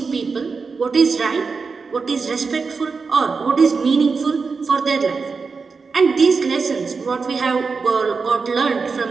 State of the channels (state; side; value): quieter; left; 4.8 dB